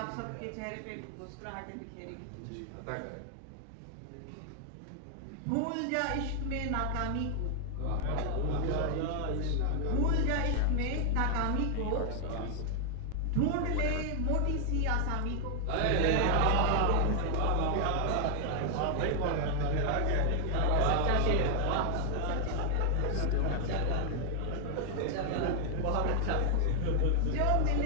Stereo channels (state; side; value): different; both; correlation 0.00